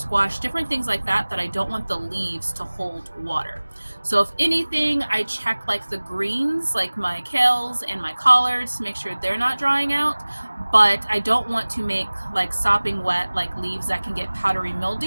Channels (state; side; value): inverted; both; correlation -1.00